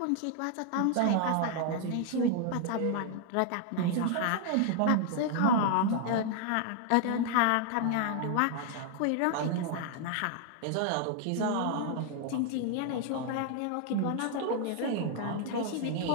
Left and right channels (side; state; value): both; different; correlation 0.00